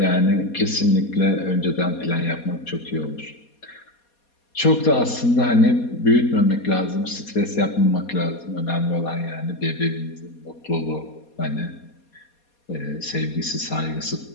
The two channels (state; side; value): late; right; 4.2 ms